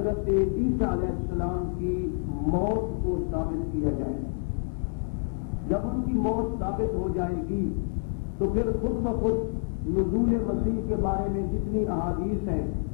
عیسیٰ علیہ السلام کی موت کو ثابت کیا جائے۔ جب ان کی موت ثابت ہو جائے گی تو پھر خود بخود نزول مسیح کے بارے میں جتنی احادیث ہیں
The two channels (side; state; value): right; silent; 59 dB below the other